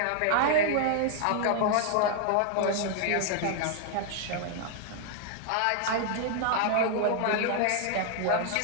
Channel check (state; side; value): different; both; correlation 0.00